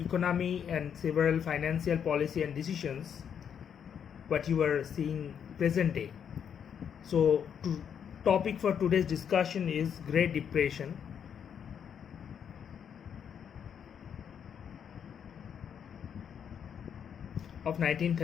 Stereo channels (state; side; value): quieter; right; 8.0 dB